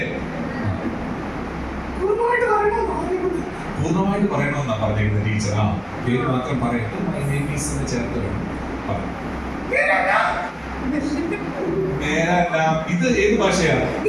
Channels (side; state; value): both; identical; correlation 1.00